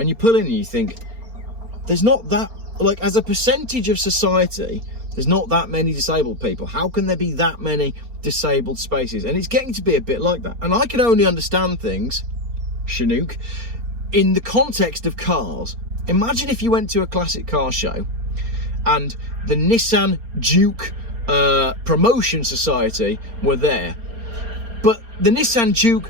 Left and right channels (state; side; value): late; left; 4.3 ms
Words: you pull in and you think, there's not that, like, as a percentage of society, there's not that many disabled people. How can there be that many disabled spaces? And it's getting to be a bit like that. And I can only understand things, Chinook, in the context of cars. Imagine if you went to a classic car show and the Nissan Juke Promotion Society were there. But the Nissan Juke